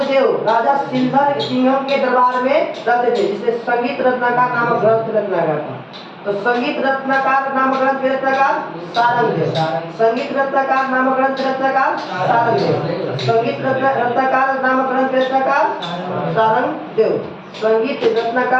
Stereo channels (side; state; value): both; identical; correlation 1.00